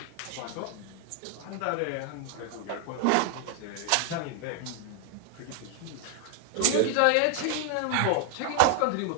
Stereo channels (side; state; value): both; different; correlation 0.00